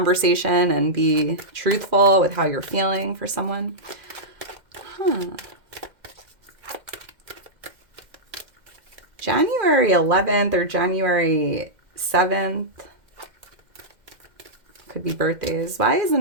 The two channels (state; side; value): late; left; 2.1 ms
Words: and be truthful with how you're feeling for someone. January 11th or January 7th. Could be birthdays. Why is the